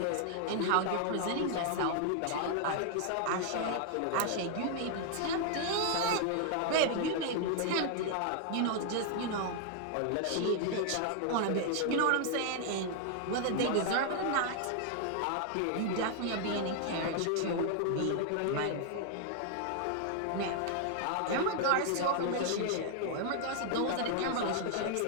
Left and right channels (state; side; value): different; both; correlation 0.00